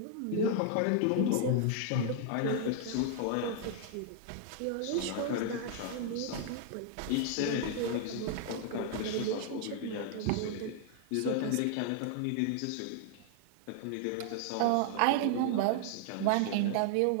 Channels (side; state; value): both; different; correlation 0.00